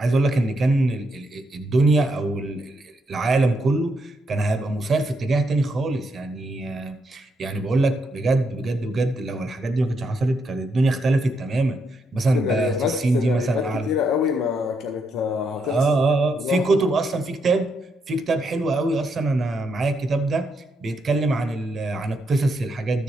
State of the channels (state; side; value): normal; both; correlation 0.79